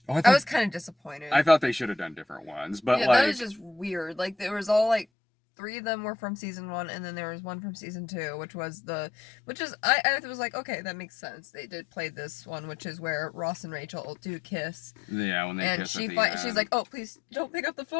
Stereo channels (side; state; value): right; drops out; at 5.1 s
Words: I was kind of disappointed. I thought they should have done different ones, but that was just weird. There was all 3 of them were from season 1, and then there was one from season 2, which is I was like, okay, that makes sense. They did play this one, which is where Ross and Rachel do kiss. Yeah, when they kiss at the end. She's like, oh, please don't pick up the